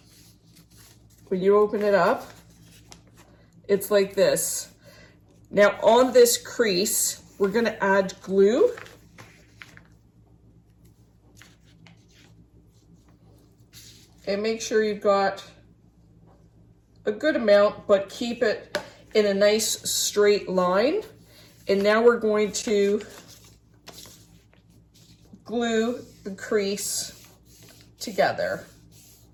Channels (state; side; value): identical; both; correlation 1.00